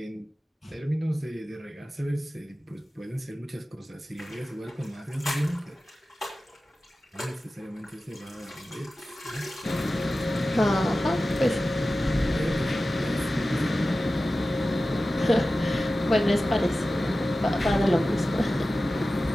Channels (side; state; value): both; normal; correlation 0.95